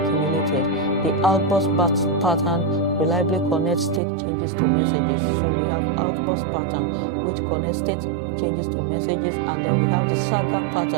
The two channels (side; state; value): left; drops out; at 4.0 s